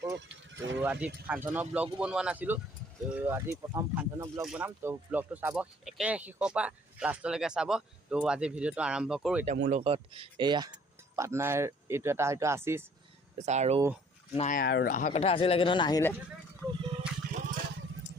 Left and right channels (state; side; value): normal; both; correlation 0.58